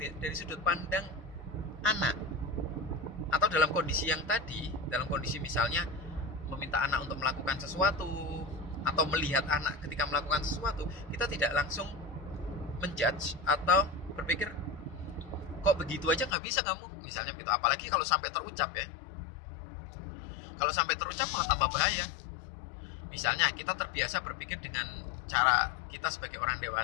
sudut pandang anak. Atau dalam kondisi yang tadi, dalam kondisi misalnya meminta anak untuk melakukan sesuatu atau melihat anak ketika melakukan sesuatu, kita tidak langsung menjudge atau berpikir, kok begitu aja nggak bisa kamu, misalnya gitu. Apalagi kalau sampai terucap ya. Kalau sampai terucap malah tambah bahaya. Misalnya kita terbiasa berpikir dengan cara kita sebagai orang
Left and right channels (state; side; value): drops out; right; at 16.4 s